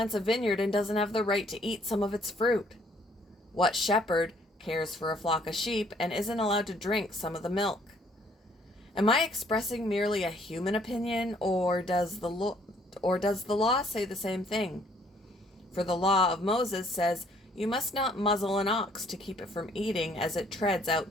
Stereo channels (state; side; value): normal; both; correlation 0.63